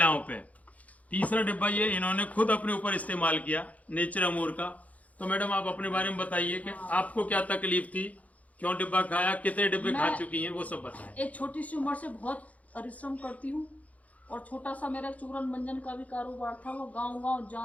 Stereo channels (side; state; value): right; late; 0.070 ms